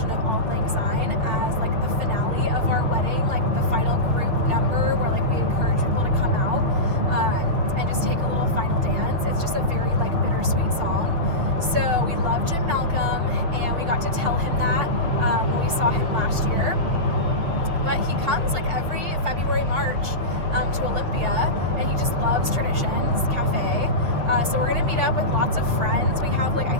of Auld Lang Syne as like the finale of our wedding, like the final group number where like we encourage people to come out and just take a little final dance. It's just a very like bittersweet song. So we love Jim Malcolm, and we got to tell him that when we saw him last year. But he comes like every February, March to Olympia, and he just loves Traditions Cafe. So we're gonna meet up with lots of friends. We have like, I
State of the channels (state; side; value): late; left; 6.6 ms